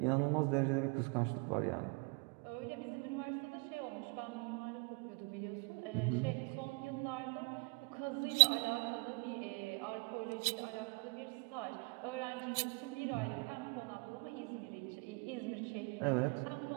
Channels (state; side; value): quieter; left; 32.1 dB